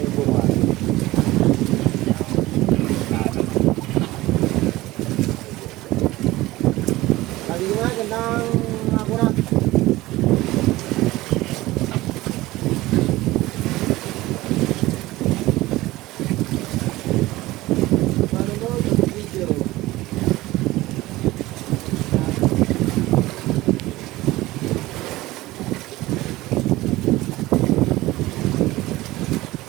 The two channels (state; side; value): quieter; left; 18.3 dB